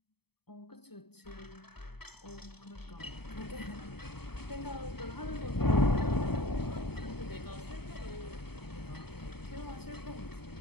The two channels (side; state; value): right; late; 0.97 ms